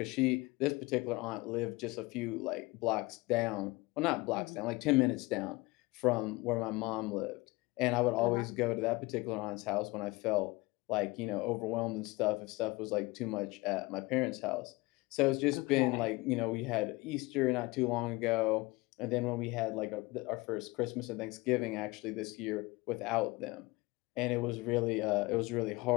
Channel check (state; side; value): quieter; right; 23.1 dB